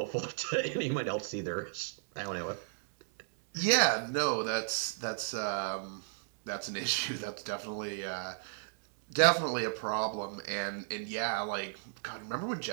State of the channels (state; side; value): silent; left; 55 dB below the other